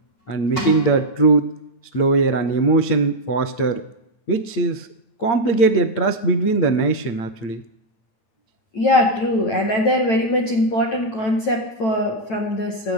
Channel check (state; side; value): late; right; 9.1 ms